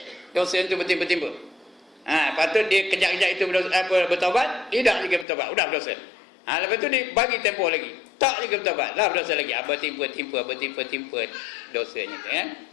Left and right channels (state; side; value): drops out; right; at 5.2 s